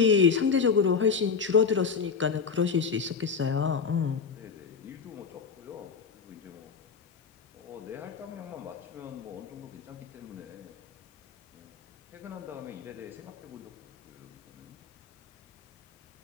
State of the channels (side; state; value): right; quieter; 5.8 dB